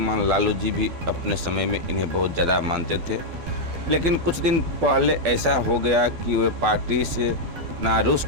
लालू जी भी अपने समय में इन्हें बहुत ज़्यादा मानते थे, लेकिन कुछ दिन पहले ऐसा हो गया कि वे पार्टी से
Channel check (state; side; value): late; left; 12 ms